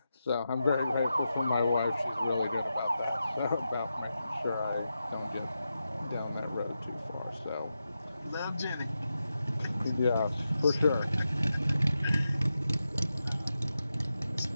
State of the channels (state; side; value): inverted; both; correlation -0.89